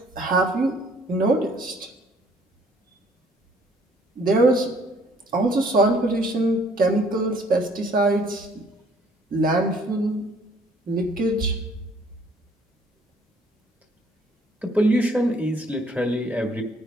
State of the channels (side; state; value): both; normal; correlation 0.60